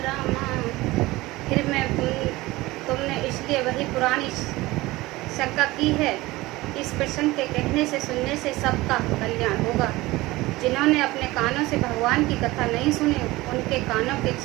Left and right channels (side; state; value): left; quieter; 19.7 dB